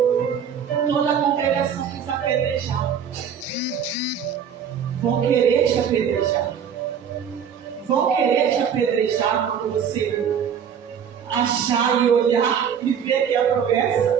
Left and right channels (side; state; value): left; quieter; 7.7 dB